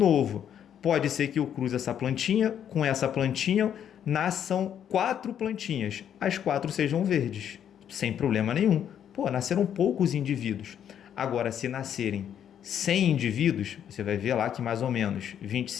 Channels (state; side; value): quieter; right; 9.3 dB